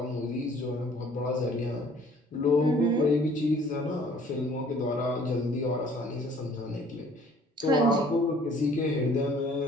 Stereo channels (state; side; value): normal; both; correlation 0.55